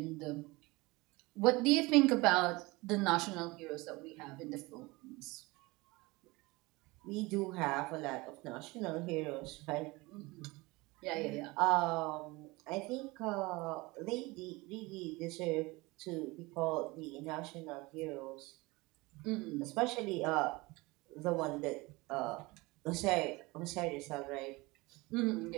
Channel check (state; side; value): quieter; left; 23.1 dB